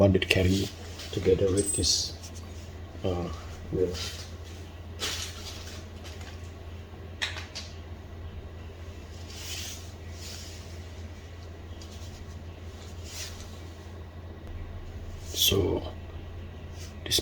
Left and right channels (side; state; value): both; identical; correlation 1.00